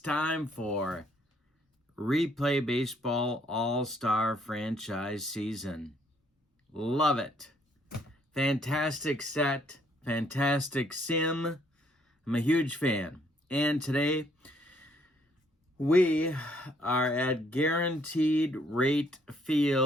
for Replay Baseball All-Star Franchise Season. Love it. Fantastic set, fantastic sim. I'm a huge fan. And today, we are at Guaranteed Rate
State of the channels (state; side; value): normal; both; correlation 0.67